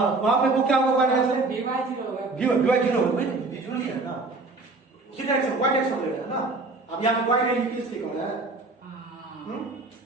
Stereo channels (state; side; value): quieter; left; 3.4 dB